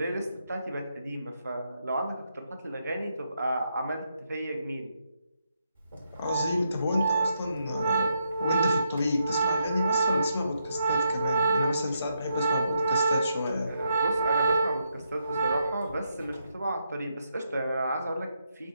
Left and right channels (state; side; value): inverted; both; correlation -0.80